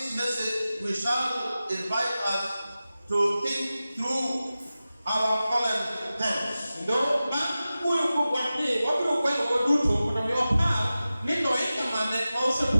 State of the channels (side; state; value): both; inverted; correlation -0.95